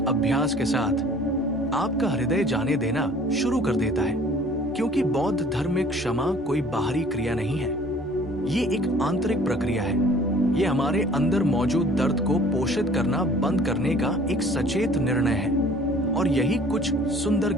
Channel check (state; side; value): normal; both; correlation 0.51